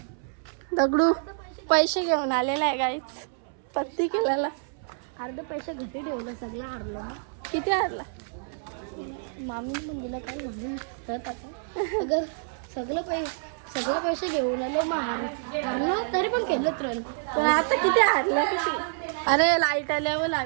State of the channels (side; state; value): left; silent; 60 dB below the other